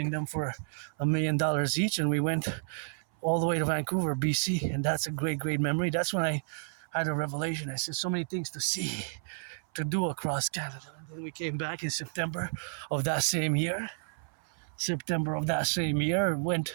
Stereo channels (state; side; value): silent; left; 57 dB below the other